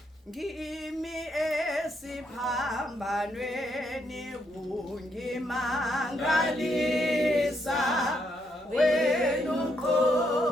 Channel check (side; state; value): both; normal; correlation 0.76